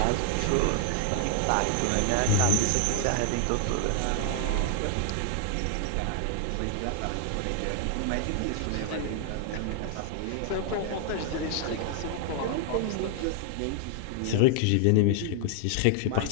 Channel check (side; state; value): both; different; correlation 0.00